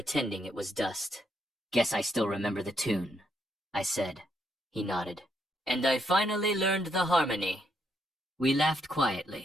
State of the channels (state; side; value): normal; both; correlation 0.76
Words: it was dust. "Guess I still remember the tune," I said. He nodded. "And I finally learned the harmony." We laughed